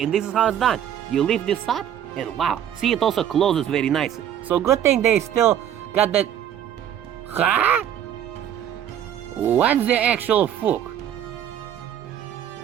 this is how it's done. You lift this up, and wow, see, it also closes very nicely. So good thing they still got that... Huh? What's the actual fuck?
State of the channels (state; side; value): quieter; left; 10.1 dB